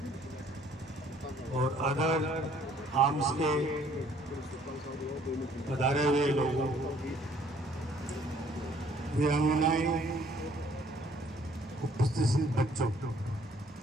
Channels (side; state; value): both; normal; correlation 0.60